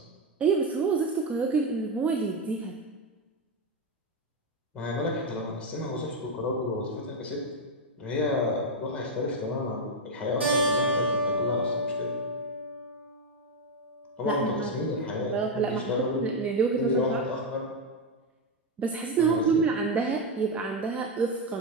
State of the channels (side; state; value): both; normal; correlation 0.06